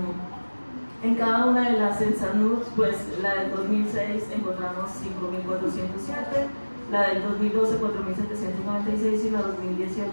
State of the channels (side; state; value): both; inverted; correlation -1.00